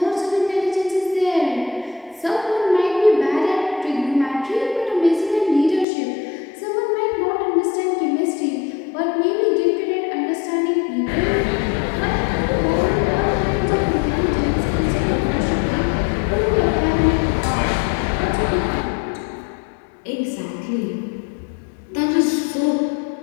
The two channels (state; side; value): drops out; right; at 5.9 s